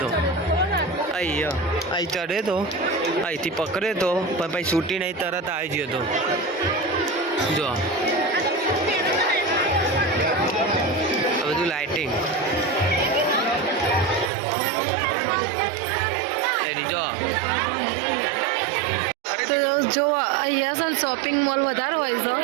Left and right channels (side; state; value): left; drops out; at 14.3 s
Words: તો. અહીંયા અહીં ચડે તો અહીંથી પકડે તો પણ પછી છૂટી નહીં તરત આવી ગયો તો. જો આ બધું લાઇટિંગ જો. તો જો અહીંયા છે ને શોપિંગ મોલ વધારે હોય છે.